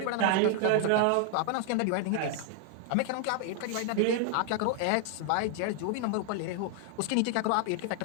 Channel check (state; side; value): different; both; correlation 0.00